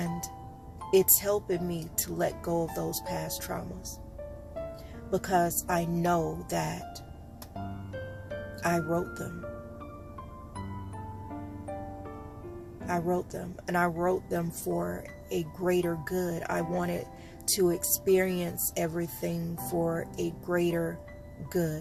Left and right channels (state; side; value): identical; both; correlation 1.00